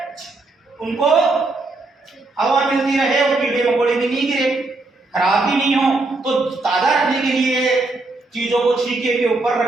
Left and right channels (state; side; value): quieter; left; 3.2 dB